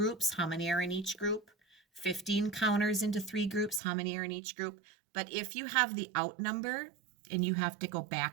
How many are in each group? 15 counters into 3 groups. How many are in each group? But if you have the out number and you have to go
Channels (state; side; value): drops out; left; at 3.8 s